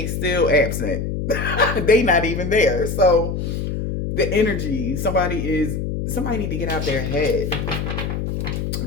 still absent. They not even there. So the energy, somebody need to get out their head.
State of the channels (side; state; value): left; noise; hum, 3 dB below the sound